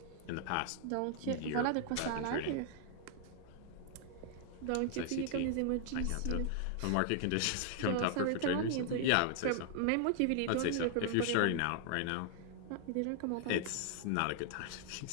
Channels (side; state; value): both; different; correlation 0.00